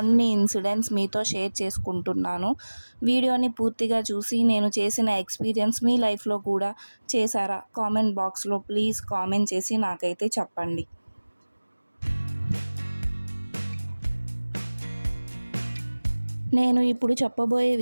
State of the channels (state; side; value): inverted; both; correlation -1.00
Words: ఇన్సిడెంట్స్ మీతో షేర్ చేసుకుంటున్నాను. వీడియోని పూర్తిగా చూసి నేను చేసిన ఎక్స్పీరియన్స్ మీ లైఫ్లో కూడా చేశారా? కామెంట్ బాక్స్లో ప్లీజ్ కామెంట్ చేసి నాకైతే చెప్పండి. నేను ఇప్పుడు చెప్పబోయే